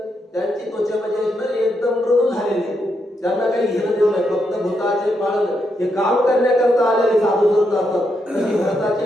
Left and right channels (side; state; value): both; normal; correlation 0.81